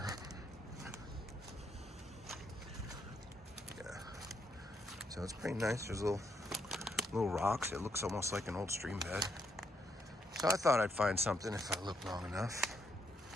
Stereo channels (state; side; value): normal; both; correlation 0.76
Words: Yeah, so it's pretty nice. There's little rocks. It looks almost like an old stream bed. So I thought I'd find something if I looked long enough.